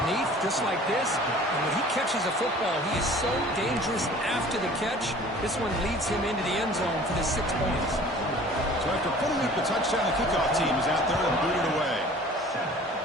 just like this. And when he catches a football, he is so dangerous after the catch. This one leads him into the end zone for the 6 points. So after putting up the touchdown, the kickoff team is out there and booted away.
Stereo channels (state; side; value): normal; both; correlation 0.47